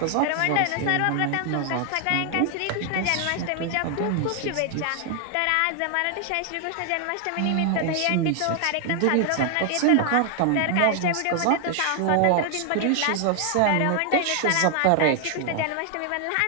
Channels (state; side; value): different; both; correlation 0.00